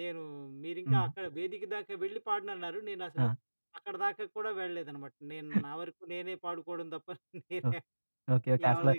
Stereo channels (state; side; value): inverted; both; correlation -1.00